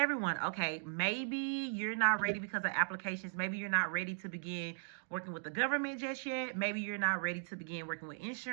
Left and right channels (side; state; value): left; silent; digital silence